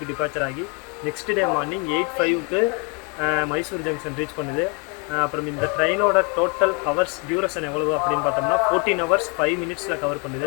டிபார்ச்சர் ஆகி நெக்ஸ்ட் டே மார்னிங் 8:05க்கு மைசூர் ஜங்ஷன் ரீச் பண்ணுது. அப்புறம் இந்த ட்ரெயினோட டோட்டல் ஹவர்ஸ் டியூரேஷன் எவ்வளவு அப்படின்னு பார்த்தோம்னா 14 hours 5 minutes கவர்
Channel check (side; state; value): right; quieter; 33.6 dB